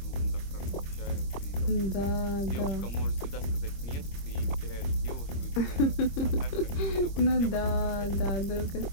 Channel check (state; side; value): late; right; 25 ms